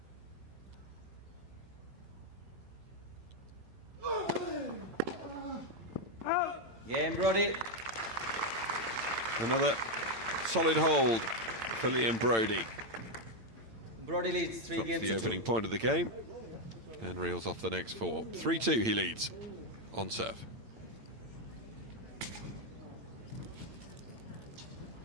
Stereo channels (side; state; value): left; late; 8.9 ms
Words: Game, Broady. Another solid hold for Liam Broady. Broady leads 3 Drops games the to opening 2. point of the game and reels off the next 4. 3-2 he leads on serve.